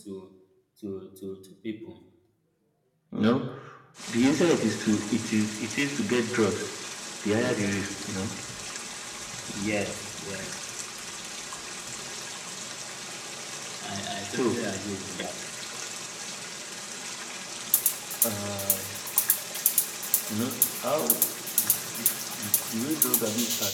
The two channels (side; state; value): both; identical; correlation 1.00